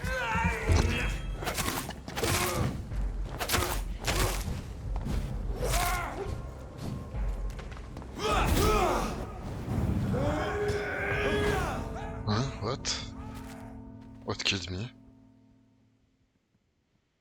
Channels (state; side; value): identical; both; correlation 1.00